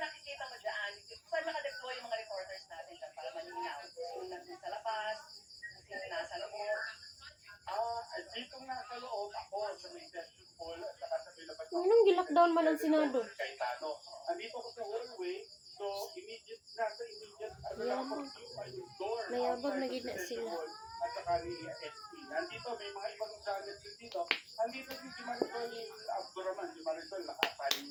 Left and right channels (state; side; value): identical; both; correlation 1.00